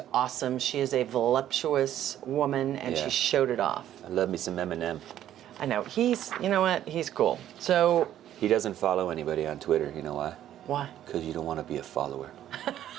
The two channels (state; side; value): quieter; left; 11.7 dB